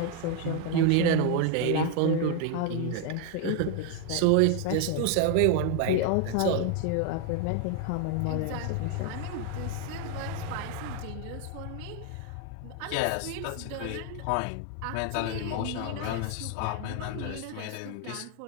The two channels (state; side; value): different; both; correlation 0.01